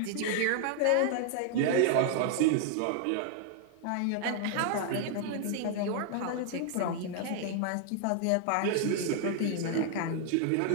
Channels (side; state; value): both; different; correlation 0.00